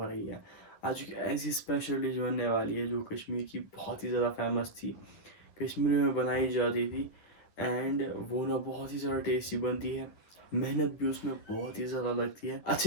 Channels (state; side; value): late; right; 10 ms